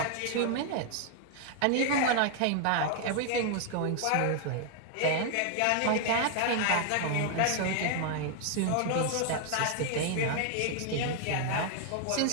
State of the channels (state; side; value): different; both; correlation 0.00